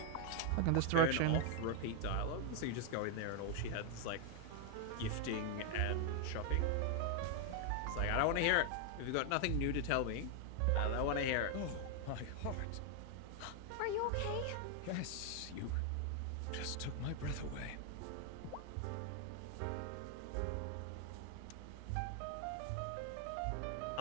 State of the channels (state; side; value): different; both; correlation 0.00